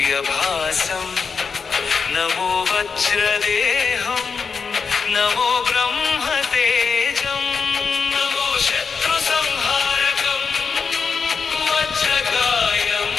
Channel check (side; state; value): right; quieter; 5.5 dB